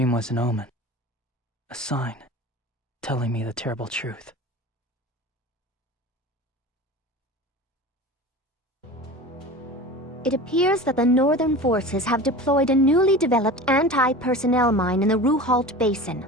was an omen. A sign, telling me the terrible truth. It appears that the Northern forces have deployed a newly developed anti-personnel mine in the Ruhalt Basin.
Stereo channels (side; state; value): both; normal; correlation 0.34